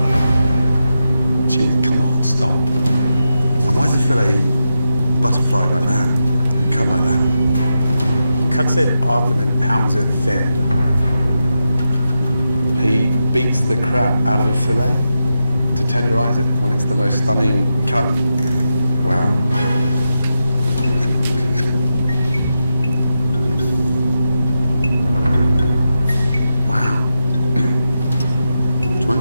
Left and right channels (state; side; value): inverted; both; correlation -0.88